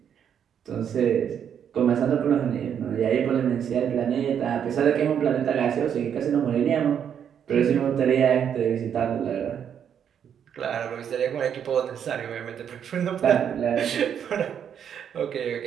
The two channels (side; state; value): left; quieter; 8.5 dB